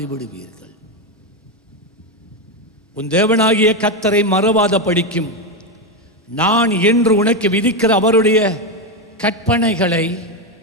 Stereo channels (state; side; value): normal; both; correlation 0.08